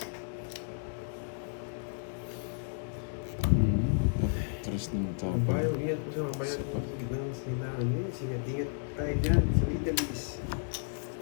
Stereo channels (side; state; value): right; silent; digital silence